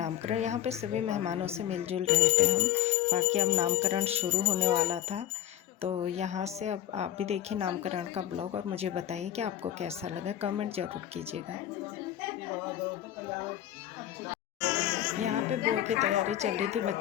यहाँ पे सभी मेहमानों से मिलजुल रहे थे हम। बाकी अब नामकरण शुरू होने वाला था, तो यहाँ से अब आप भी देखिए नामकरण का ब्लॉग और मुझे बताइए कि आपको कैसा लगा, कमेंट ज़रूर कीजिएगा। यहाँ पे बुआ की तैयारी चल रही थी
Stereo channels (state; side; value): quieter; right; 11.9 dB